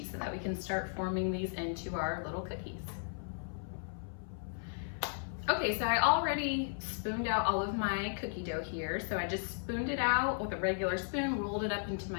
so that we can start forming these into our little cookies. Okay, so I already spooned out all of my cookie dough here. So I just spooned it out with a regular spoon, rolled it up into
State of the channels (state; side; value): silent; right; 54 dB below the other